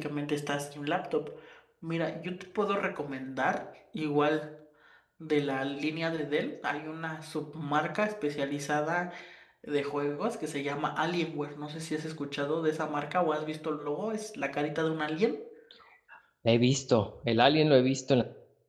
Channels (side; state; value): both; identical; correlation 1.00